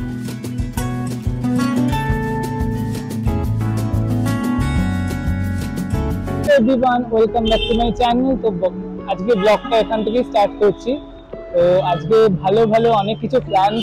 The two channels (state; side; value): identical; both; correlation 1.00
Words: everyone welcome back to my channel. তো আজকে ব্লগটা এখান থেকে স্টার্ট করছি। তো আজকে ভালো ভালো অনেক কিছু